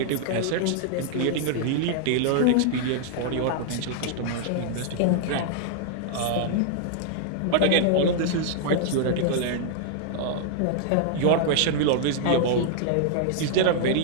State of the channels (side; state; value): both; different; correlation -0.01